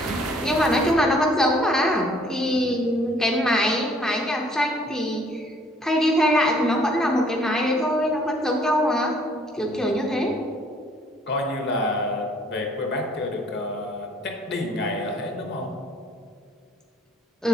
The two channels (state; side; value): normal; both; correlation 0.60